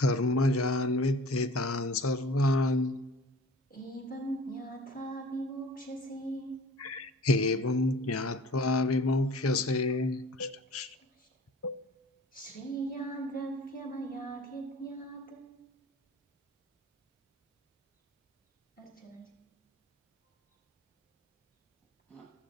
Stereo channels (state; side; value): normal; both; correlation 0.46